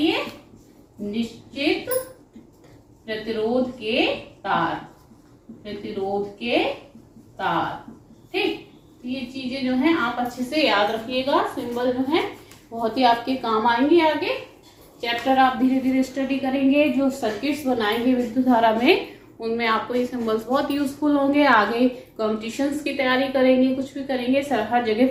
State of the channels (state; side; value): identical; both; correlation 1.00